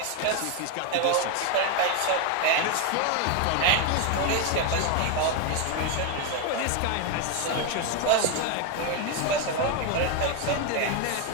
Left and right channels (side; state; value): both; different; correlation 0.01